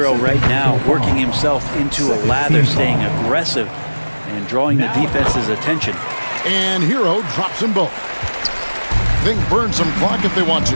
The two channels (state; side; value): inverted; both; correlation -1.00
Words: right now working himself into a lather, staying aggressive and drawing the defense's attention. And Hero drops them both. They can burn some clock if they want to.